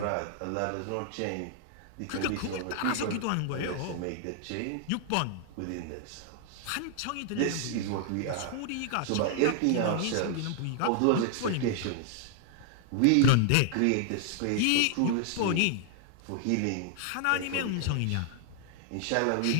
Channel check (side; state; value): both; different; correlation 0.00